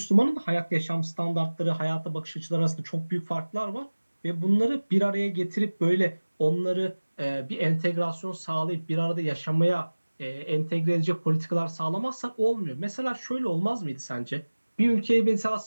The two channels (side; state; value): both; inverted; correlation -1.00